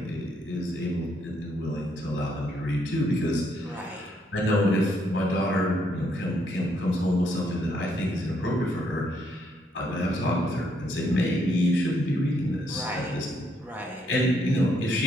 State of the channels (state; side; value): normal; both; correlation 0.73